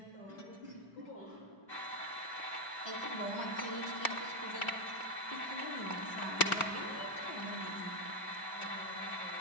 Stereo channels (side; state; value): right; late; 2.4 ms